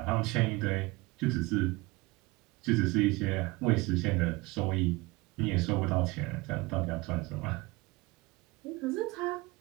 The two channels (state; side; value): quieter; left; 23.1 dB